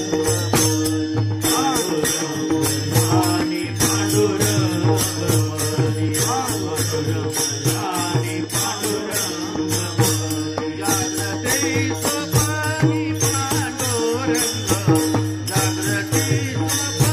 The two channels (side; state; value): both; identical; correlation 1.00